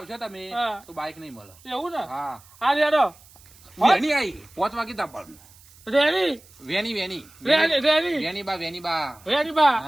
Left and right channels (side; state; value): right; noise; hiss, 25 dB below the sound